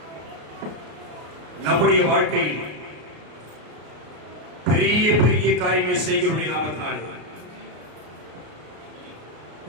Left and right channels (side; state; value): left; late; 33 ms